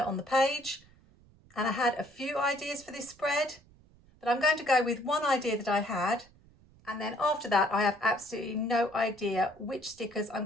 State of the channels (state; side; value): noise; right; rumble, 27 dB below the sound